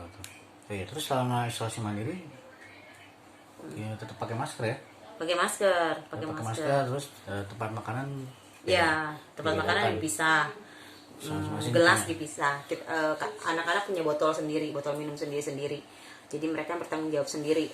Terus selama isolasi mandiri ya tetap pakai masker ya. Pakai masker. Terus tempat makanan tempat makanan dipisah. Gelas dipisah. Anak-anak punya botol sendiri, botol minum sendiri. Jadi mereka bertanggung jawab sendiri,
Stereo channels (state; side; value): identical; both; correlation 1.00